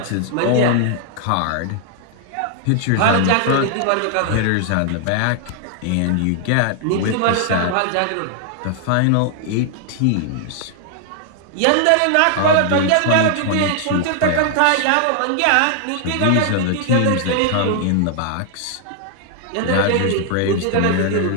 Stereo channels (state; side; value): different; both; correlation 0.00